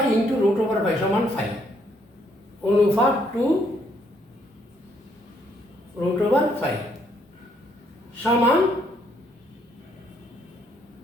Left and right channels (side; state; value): both; normal; correlation 0.70